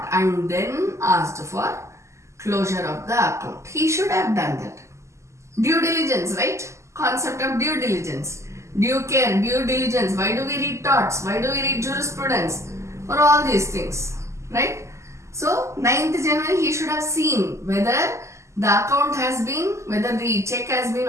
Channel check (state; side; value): late; left; 0.14 ms